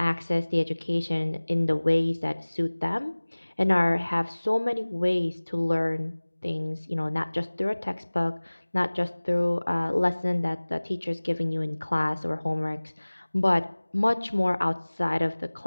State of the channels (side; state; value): both; inverted; correlation -1.00